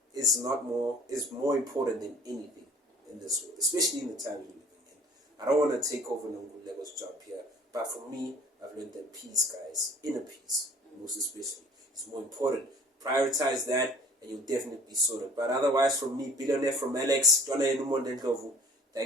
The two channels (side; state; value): both; normal; correlation 0.50